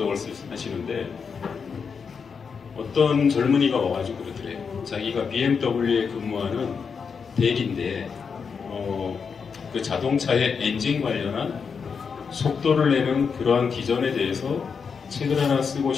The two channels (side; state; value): right; quieter; 5.9 dB